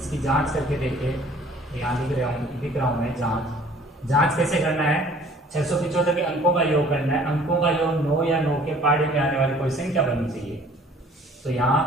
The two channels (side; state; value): both; normal; correlation 0.53